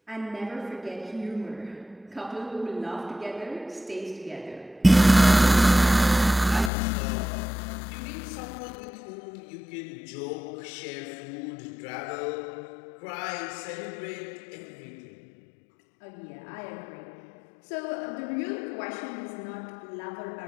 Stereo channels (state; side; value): drops out; right; at 6.7 s